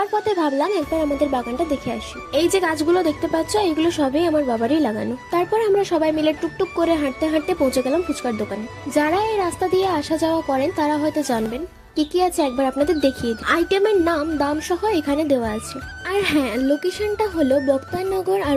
পথে ভাবলাম একবার আমাদের বাগানটা দেখে আসি। এই যে গাছগুলো দেখতে পাচ্ছ, এগুলো সবই আমার বাবারই লাগানো। তারপর আমরা সবাই মিলে টুকটুক করে হাঁটতে হাঁটতে পৌঁছে গেলাম ফুচকার দোকানে। যারা এই রাস্তা দিয়ে আসা যাওয়া করেন তারা হয়তো জানবেন কি কি আছে, একবার আপনাদের দেখিয়ে দিই। আইটেমের নাম, দাম সহ এখানে দেওয়া আছে। আর হ্যাঁ, লোকেশনটা হলো বক্তারনগর আর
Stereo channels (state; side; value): identical; both; correlation 1.00